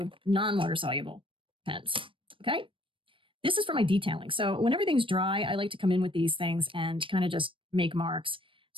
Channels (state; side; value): late; left; 0.25 ms